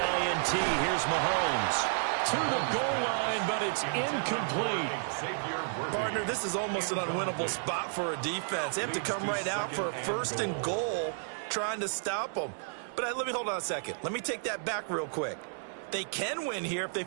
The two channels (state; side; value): silent; left; 57 dB below the other